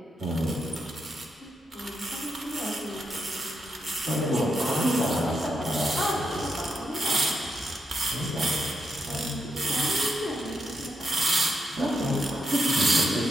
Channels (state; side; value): normal; both; correlation 0.82